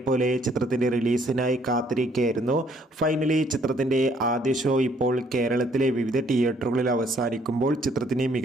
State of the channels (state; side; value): normal; both; correlation 0.65